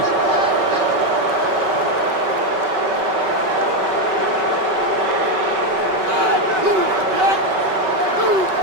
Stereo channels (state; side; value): late; left; 5.3 ms